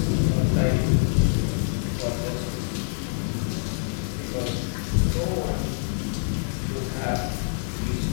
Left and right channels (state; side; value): silent; right; 60 dB below the other